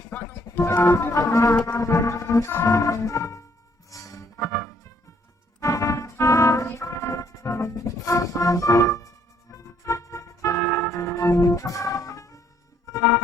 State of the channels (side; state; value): both; normal; correlation 0.67